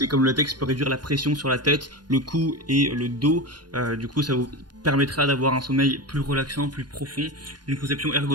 et comme le latex peut réduire la pression sur la tête, le cou et le dos. Du coup, ça vous permettra d'avoir un sommeil plus relaxant, plus profond. Une conception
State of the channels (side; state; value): left; late; 0.70 ms